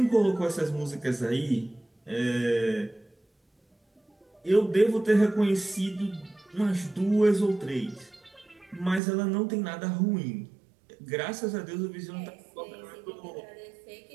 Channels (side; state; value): left; drops out; at 9.0 s